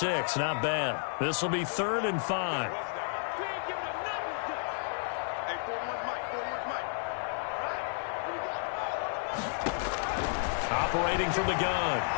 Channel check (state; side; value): silent; right; 57 dB below the other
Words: Not bad. This will be 3rd and 5. Operating from the gun,